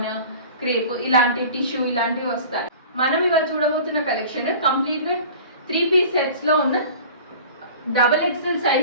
క్రేప్ ఇలాంటి టిష్యూ ఇలాంటివి వస్తాయి. మనం ఇవాళ చూడబోతున్న కలెక్షన్ కంప్లీట్గా 3 పీస్ సెట్స్లో ఉన్న XXL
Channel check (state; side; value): inverted; both; correlation -0.41